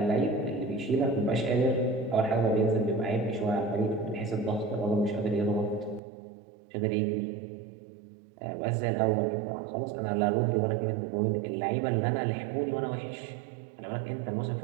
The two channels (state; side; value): drops out; left; at 6.0 s